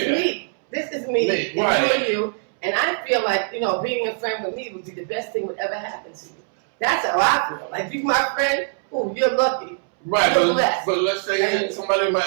me. This is me. Right. And you. And I feel like, you know, being a friend with me would be the best thing would ever happen to you. That's how I feel. Like, you my friend, ooh, you're lucky. Right, you're blessed. But let's say somebody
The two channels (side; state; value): left; silent; 64 dB below the other